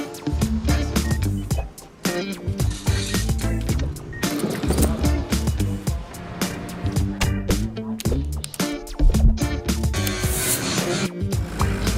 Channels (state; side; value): identical; both; correlation 1.00